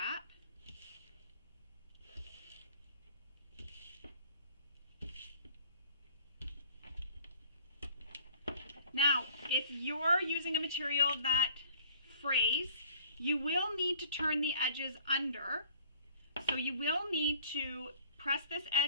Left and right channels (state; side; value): inverted; both; correlation -0.52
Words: Now, if you're using a material that frays, you will need to turn the edges under. So you will need to press this